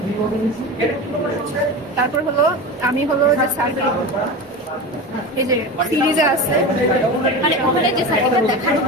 তারপর হলো আমি হলো যে সার্ভে এই যে সিরিজে আছে মানে ওখানে যে সাইডটা দেখানো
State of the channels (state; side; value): normal; both; correlation 0.27